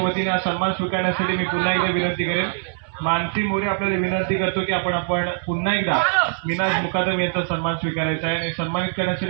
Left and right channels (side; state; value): left; silent; 64 dB below the other